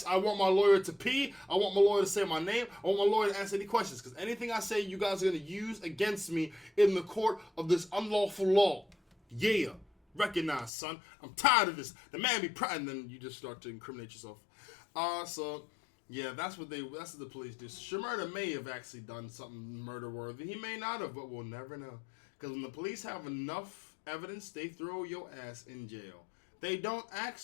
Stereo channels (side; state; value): right; drops out; at 10.7 s